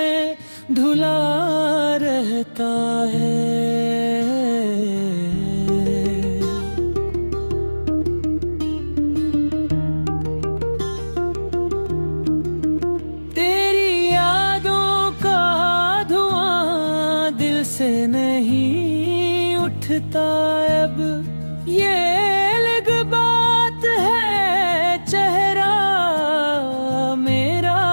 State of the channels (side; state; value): both; inverted; correlation -1.00